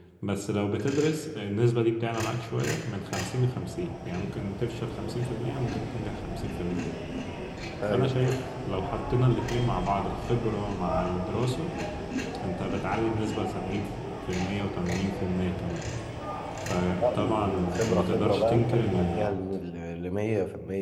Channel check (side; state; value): both; identical; correlation 1.00